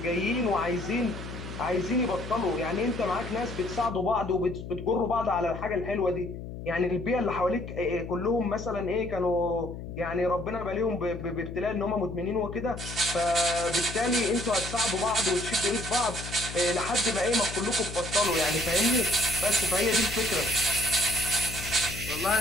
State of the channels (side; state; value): left; noise; hum, 9 dB below the sound